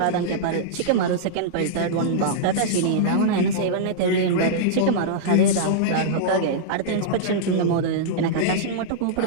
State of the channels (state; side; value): different; both; correlation -0.03